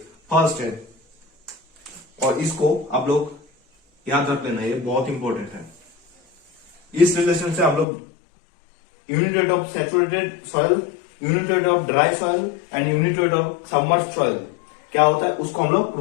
first है और इसको आप लोग याद रख लेना, ये बहुत इंपॉर्टेंट है। इस रिलेशन से हम लोग unit weight of saturated soil, unit weight of dry soil and unit weight of submerged soil क्या होता है उसको हम लोग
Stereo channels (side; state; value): right; drops out; at 7.9 s